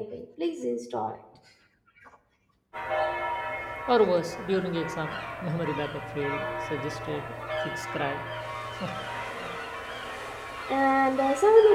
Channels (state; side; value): identical; both; correlation 1.00